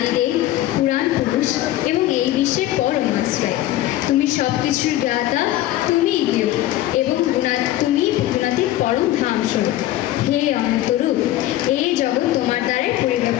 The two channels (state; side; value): quieter; right; 14.6 dB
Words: পুরাণ পুরুষ এবং এই বিশ্বের পরম আশ্রয়। তুমি সবকিছুর জ্ঞাতা, তুমি জ্ঞেয় এবং তুমি গুণাতীত পরম ধাম স্বরূপ। হে অনন্তরূপ, এই জগৎ তোমার দ্বারাই